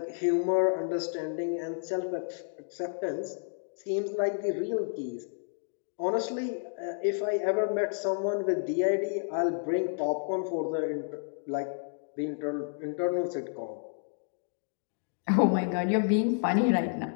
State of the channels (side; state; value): right; silent; digital silence